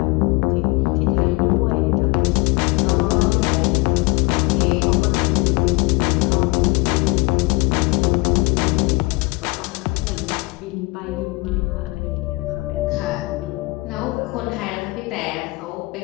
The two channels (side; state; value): right; quieter; 25.2 dB